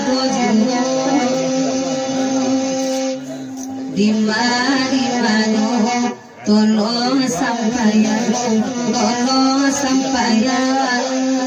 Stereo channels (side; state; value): both; identical; correlation 1.00